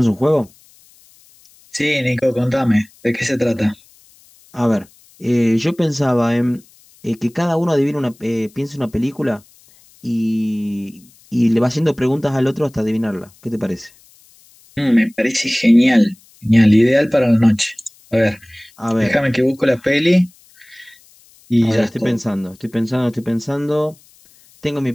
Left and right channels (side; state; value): left; noise; hiss, 29 dB below the sound